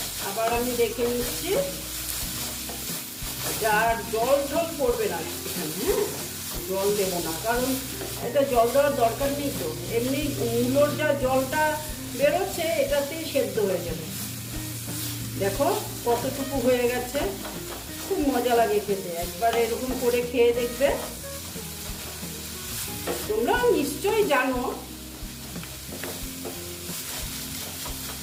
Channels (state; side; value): identical; both; correlation 1.00